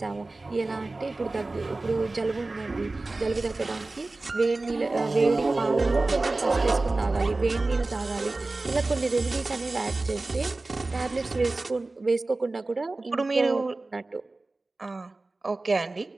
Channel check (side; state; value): left; quieter; 3.2 dB